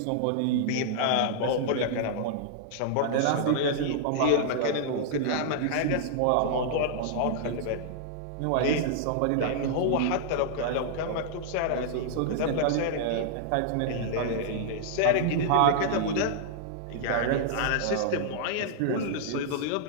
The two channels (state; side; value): different; both; correlation -0.01